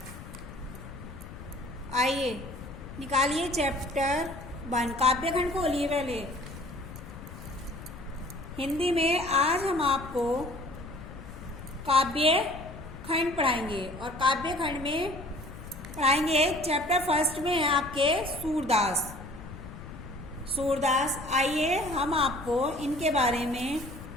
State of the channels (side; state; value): left; noise; rumble, 13 dB below the sound